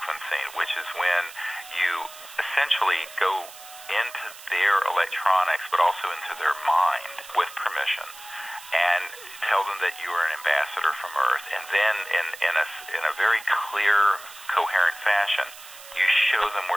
which is when you essentially go into their electronics, but also into their mind with permission, and tell them that you are an ambassador from Earth. And then in a very clear, coherent fashion, you show them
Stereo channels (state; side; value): noise; right; hiss, 17 dB below the sound